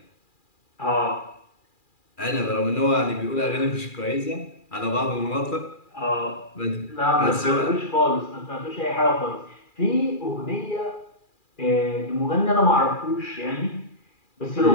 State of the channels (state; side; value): late; right; 2.4 ms